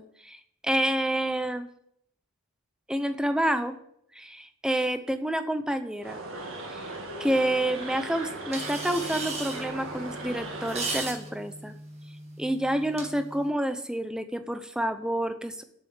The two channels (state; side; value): normal; both; correlation 0.82